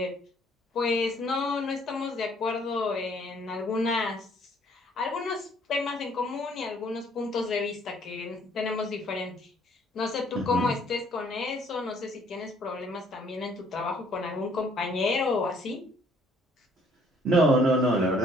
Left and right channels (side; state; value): both; normal; correlation 0.62